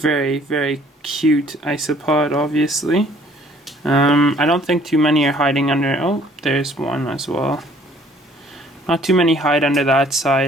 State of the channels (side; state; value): both; normal; correlation 0.58